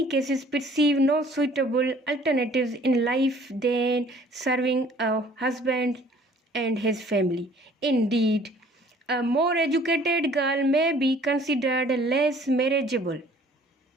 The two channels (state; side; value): normal; both; correlation 0.55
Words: cases perceive no suitable alternatives in life than serving a husband and his family. Indeed, a more educated girl may be considered less marriageable.